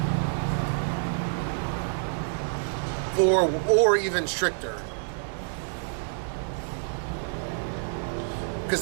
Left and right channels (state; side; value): silent; left; digital silence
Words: Or even stricter. Because